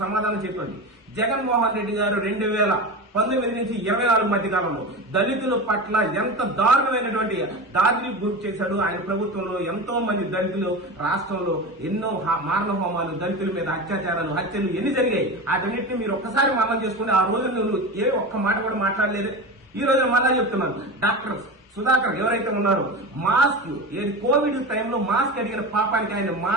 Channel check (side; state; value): both; normal; correlation 0.26